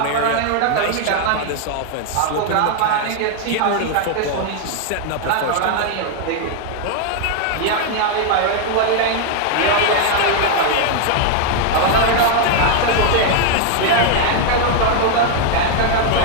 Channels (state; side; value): different; both; correlation 0.00